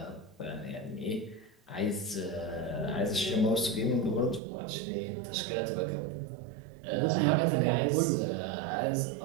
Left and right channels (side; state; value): left; drops out; at 4.4 s